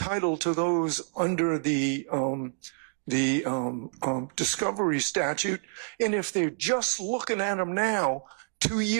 to those under the discovery statute. And if they're just looking at them now, 2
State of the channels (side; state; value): left; silent; digital silence